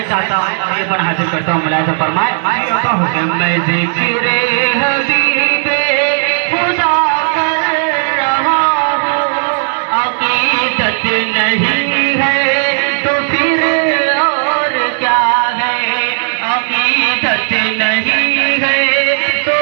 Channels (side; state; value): left; silent; digital silence